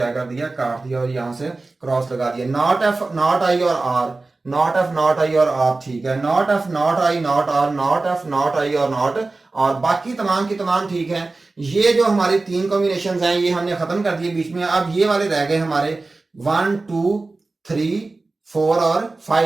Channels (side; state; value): left; quieter; 3.4 dB